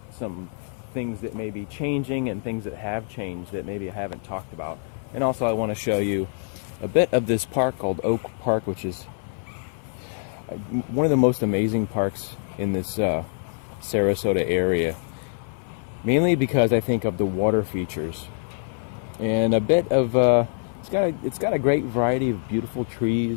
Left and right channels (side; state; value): right; silent; 58 dB below the other